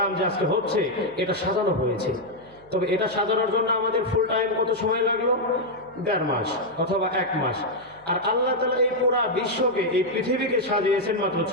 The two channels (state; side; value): noise; right; hum, 28 dB below the sound